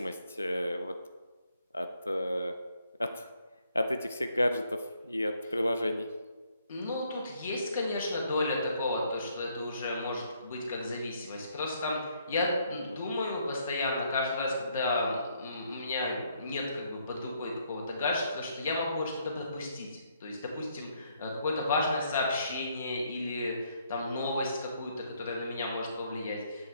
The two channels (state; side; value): inverted; both; correlation -0.70